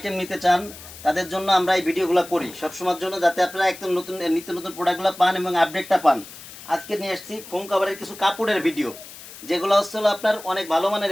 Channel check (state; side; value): noise; left; hiss, 16 dB below the sound